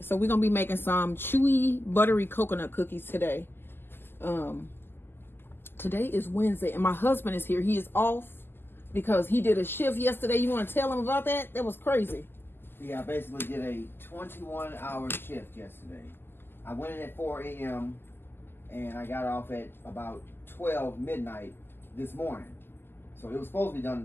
we're gonna be making some chewy buttery coconut cookies today. Today is Wednesday and my husband is here. He is off because he did a shift yesterday. You want to tell him about that? That was crazy. Yeah, I basically did a 21-hour shift yesterday. I went in at 4 a.m. and I got off at about 12 midnight this morning. So it was supposed to be done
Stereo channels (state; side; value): late; right; 0.10 ms